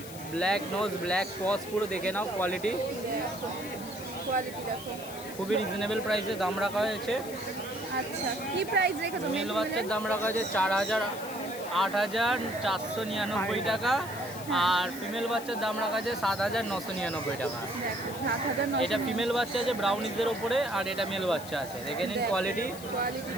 ব্ল্যাক নোজ ব্ল্যাক পজ, পুরো দেখে নাও কোয়ালিটি। কোয়ালিটি দেখো, খুবই রিজনেবল প্রাইসে দাম রাখা হয়েছে। আচ্ছা কি প্রাইস রেখেছো? মেল বাচ্চার দাম রাখা হয়েছে 8,499 টাকা আর ফিমেল বাচ্চার দাম রাখা আছে 7,999 টাকা। দেখো 7,900। এটা ফিমেল বাচ্চা আছে ব্রাউনিজের ওপরে আর এটা মেল বাচ্চা আছে। দেখে নিন কোয়ালিটি, কোয়ালিটি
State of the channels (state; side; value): noise; left; hiss, 14 dB below the sound